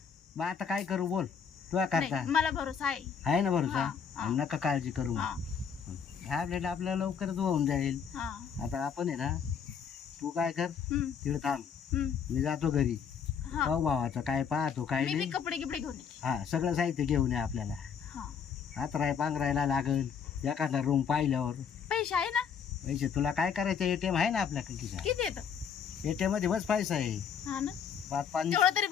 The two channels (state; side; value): quieter; right; 7.1 dB